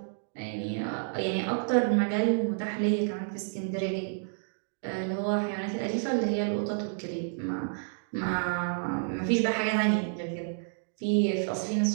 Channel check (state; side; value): silent; left; digital silence